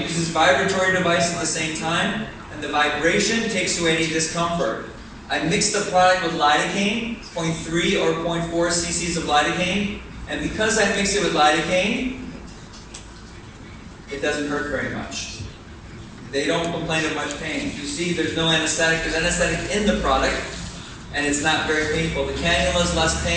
this vibratory device at the same time, and the vibration takes away any discomfort. I mix the product with lidocaine, 0.3 or 0.4 cc's of lidocaine, and because I mix it with lidocaine, it doesn't hurt very much. They don't complain of much pain. You see, there's no anesthetic. There's anesthetic in the product, and it's not very painful. The cannula is less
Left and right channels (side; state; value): both; identical; correlation 1.00